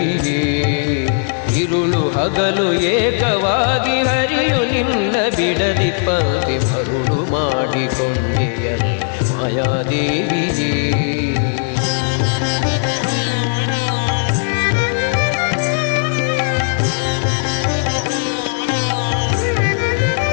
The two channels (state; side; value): silent; right; 68 dB below the other